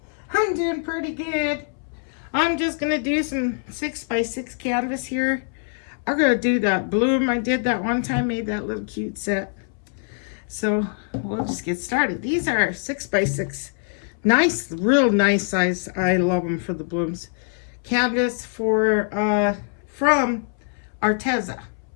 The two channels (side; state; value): right; silent; 63 dB below the other